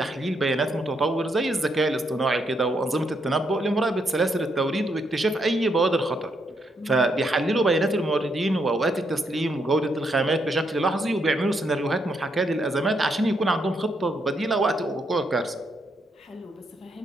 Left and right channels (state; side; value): normal; both; correlation 0.77